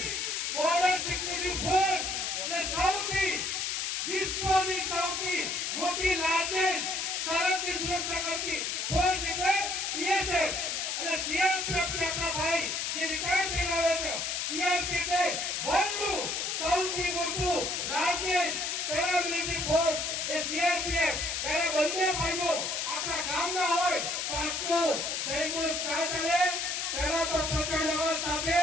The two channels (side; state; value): left; noise; hiss, 1 dB below the sound